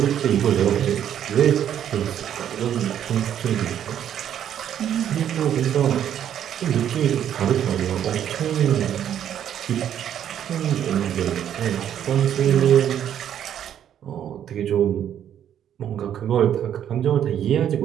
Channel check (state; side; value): quieter; left; 9.9 dB